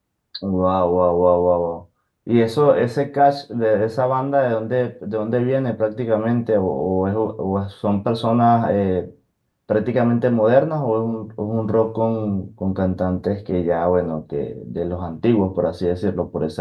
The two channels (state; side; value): identical; both; correlation 1.00